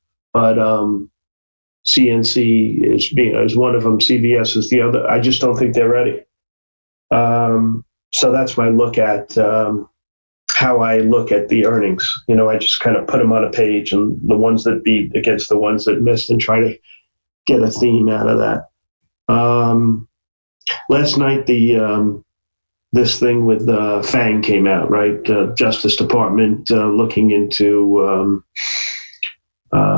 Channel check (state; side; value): inverted; both; correlation -1.00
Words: But CNC is one of them. CVS is the other. I just don't think they're ready. So that's my look at how I look at the earnings. I just kind of put them on a page, and the ones that beat against the ones that missed, and try to get a theme out of that. Last night, this thing with FANG came out, right? Justice Department looking into